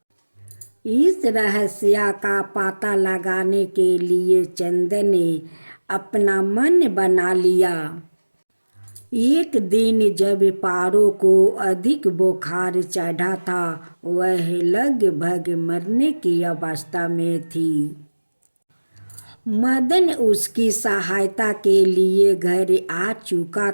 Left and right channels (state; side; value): inverted; both; correlation -1.00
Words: इस रहस्य का पता लगाने के लिए चंदन ने अपना मन बना लिया। एक दिन जब पारो को अधिक बुखार चढ़ा था, वह लगभग मरने की अवस्था में थी। मदन उसकी सहायता के लिए घर आ चुका